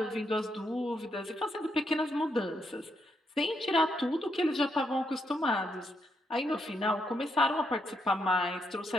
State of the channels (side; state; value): both; normal; correlation 0.78